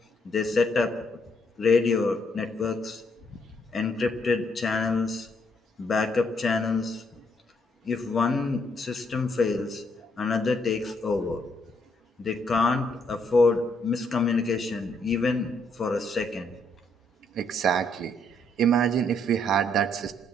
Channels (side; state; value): both; normal; correlation 0.72